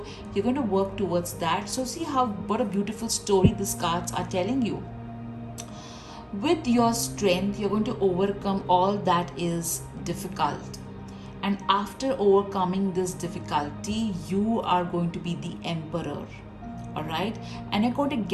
you're going to work towards that. So see what a beautiful story these cards are telling you. With your strength, you're going to overcome all that is difficult, and after overcoming this difficulty, you are going to be the emperor. All right, and you're going to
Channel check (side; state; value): both; identical; correlation 1.00